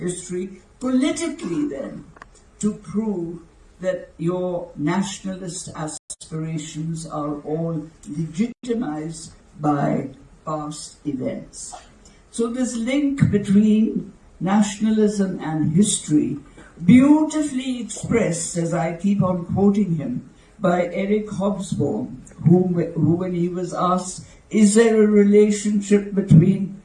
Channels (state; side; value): identical; both; correlation 1.00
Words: politically then to prove that your nationalist aspirations are all legitimized by past events. So this link between nationalism and history, beautifully expressed, as I keep on quoting him, by Eric Hobsbawm, who when he was asked, is there a relationship between